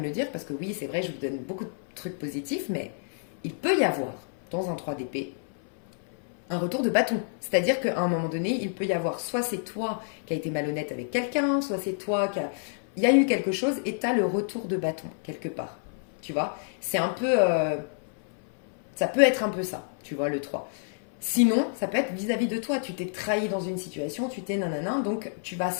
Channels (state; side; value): silent; right; 59 dB below the other